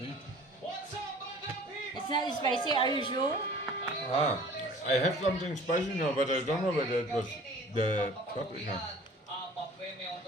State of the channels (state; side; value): normal; both; correlation 0.48